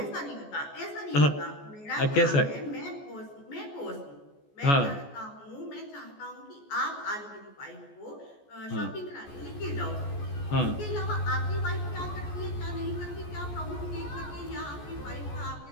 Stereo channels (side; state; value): right; late; 14 ms